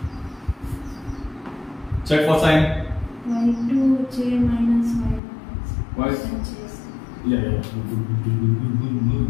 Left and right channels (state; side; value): drops out; right; at 5.2 s